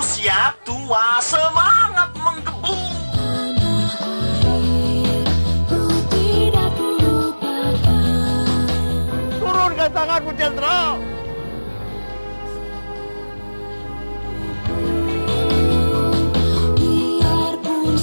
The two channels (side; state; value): both; inverted; correlation -1.00